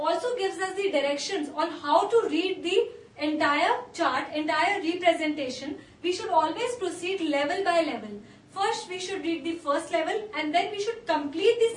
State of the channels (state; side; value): identical; both; correlation 1.00